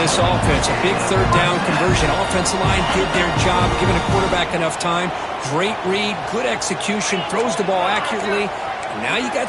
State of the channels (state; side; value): identical; both; correlation 1.00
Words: offense. A big 3rd down conversion. Offensive line did their job, giving a quarterback enough time. Great read, good execution, throws the ball accurately. And now you got